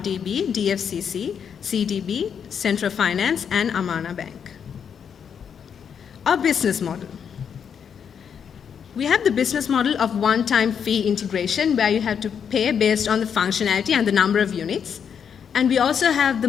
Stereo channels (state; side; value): quieter; right; 7.5 dB